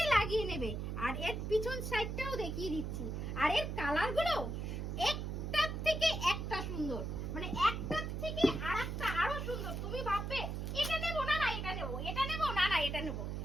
লাগিয়ে নেবে। আর এর পিছন সাইডটাও দেখিয়ে দিচ্ছি। আর এর কালারগুলো একটার থেকে একটা সুন্দর, মানে একটার থেকে আরেকটা আরো সুন্দর। তুমি ভাববে এটা নেবো না, না এটা নেবো, এটা নেবো না, না এটা নেবো।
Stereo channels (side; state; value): right; noise; hum, 3 dB below the sound